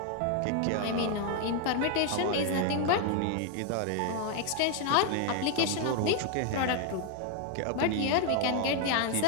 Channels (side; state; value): both; different; correlation 0.00